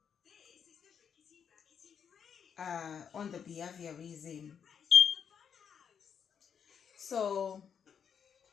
on the behaviorism. So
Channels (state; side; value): quieter; right; 7.5 dB